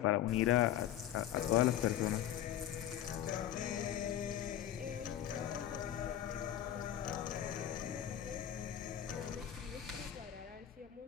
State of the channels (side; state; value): right; quieter; 11.3 dB